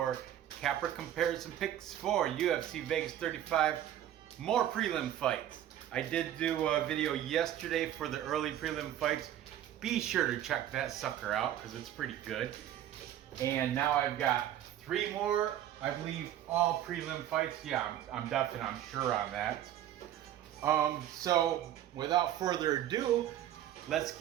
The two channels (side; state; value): left; quieter; 11.7 dB